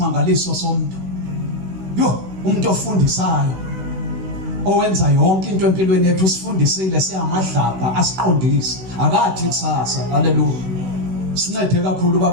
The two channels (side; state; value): left; late; 16 ms